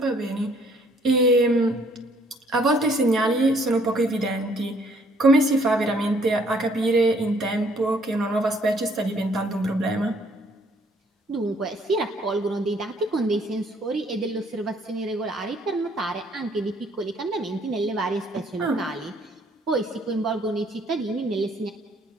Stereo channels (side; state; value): both; normal; correlation 0.63